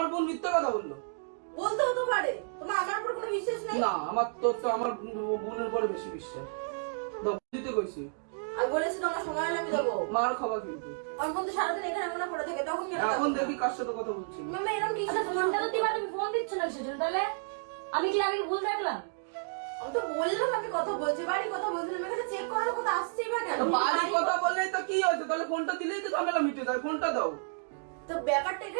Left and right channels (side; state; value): left; silent; digital silence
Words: বোন মিথ্যা কথা বললো। বলতে হতে পারে। তোমার আমার উপর কোনো বিশ্বাস নেই? না, আমার তোর তো আমার বোনের উপরে বেশি বিশ্বাস। দাও, দিতে কইছি। আমি বলেছি তোমার সময় হলে আমি দেবো। মার খাবা কিন্তু। আমার বোন তো সারাদিন এখানে মনে পড়ে থাকে, তখন কেন? এখন দেখি কার সাথে কথা বলছি। মামা এরকম কি? ফোনটা তো দিবা, তুমি ফোন দিচ্ছ না সেজন্য। তাহলে আমি কি ভুল দেখলাম? আমি তো বললাম আমি কথা বলছি, বাড়ি কথা বলছিলাম, এখানে চেক করার কথা আসছেই বা কেন? তো বাড়ি কথা বললেই তো কি হয়েছে? তাহলে ফোনটা দিলেই তো ঝামেলা মিটে যায়। ফোনটা দাও। তো ব্যাপারটা